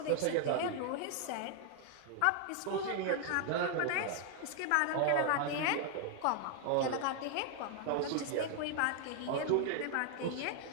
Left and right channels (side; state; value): both; different; correlation 0.00